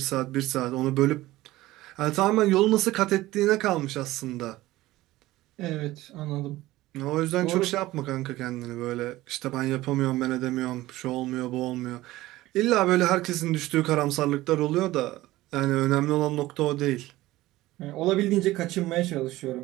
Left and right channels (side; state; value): left; quieter; 17.3 dB